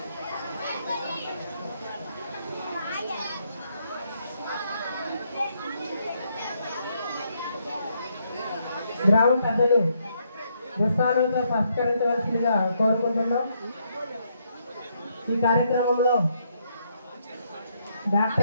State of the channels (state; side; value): inverted; both; correlation -0.74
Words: గ్రామ పెద్దలు దుస్తాలతో సత్కరించవలసిందిగా కోరుకుంటున్నాం. ఈ కార్యక్రమంలో